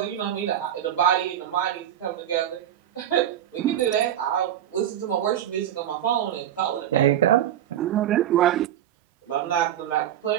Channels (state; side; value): quieter; left; 10.9 dB